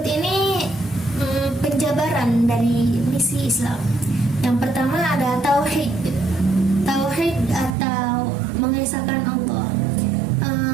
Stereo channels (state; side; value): drops out; left; at 7.8 s